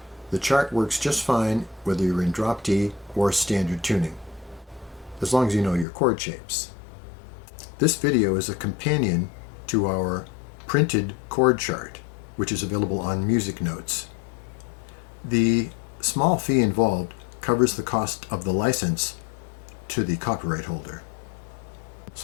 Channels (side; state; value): right; drops out; at 5.9 s